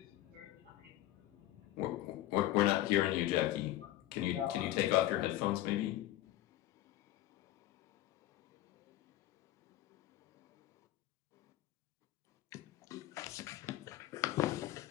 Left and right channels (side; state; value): right; quieter; 14.9 dB